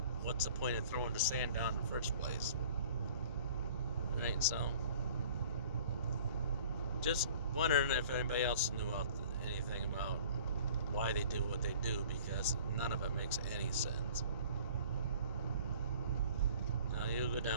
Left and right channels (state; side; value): inverted; both; correlation -0.49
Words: what's the point of throwing the sand down in the first place, right? So just wondering if anybody else knew anything about why they do what they do, because none of it makes any sense. Now you go